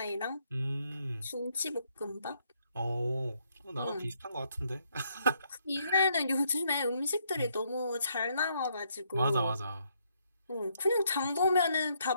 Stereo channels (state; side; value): inverted; both; correlation -0.73